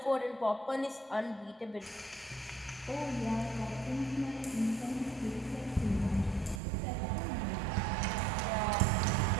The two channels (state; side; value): drops out; left; at 6.6 s